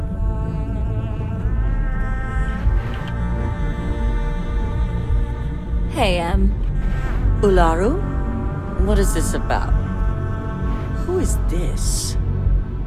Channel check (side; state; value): both; identical; correlation 1.00